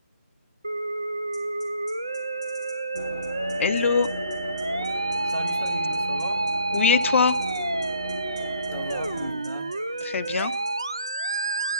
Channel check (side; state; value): both; inverted; correlation -0.61